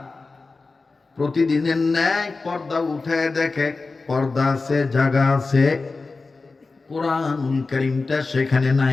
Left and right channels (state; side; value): quieter; right; 3.9 dB